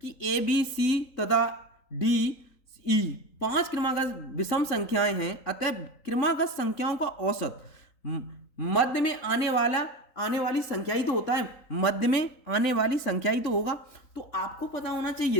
कि ए बी सी तथा डी ई 5 क्रमागत विषम संख्याएं हैं, अतः क्रमागत संख्याओं का औसत मध्य में आने वाली संख्या ही तो होता है, मध्य में आने वाली संख्या ही तो होगा। तो आपको पता होना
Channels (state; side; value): late; right; 3.9 ms